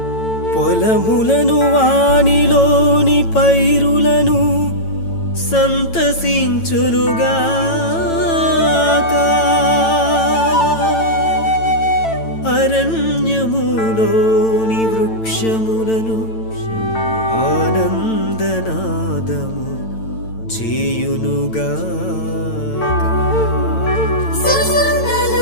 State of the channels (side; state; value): right; late; 9.0 ms